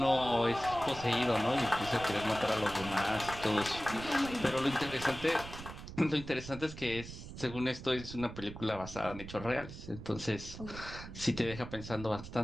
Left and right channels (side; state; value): right; noise; rumble, 12 dB below the sound